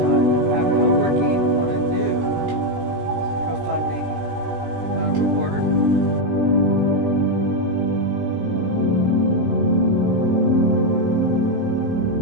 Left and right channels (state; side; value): late; left; 17 ms